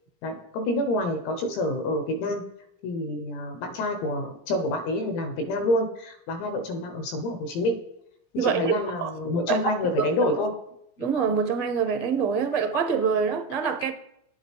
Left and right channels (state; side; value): late; right; 17 ms